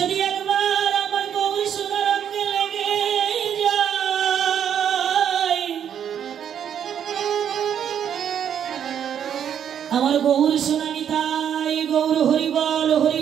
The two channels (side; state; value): left; quieter; 8.9 dB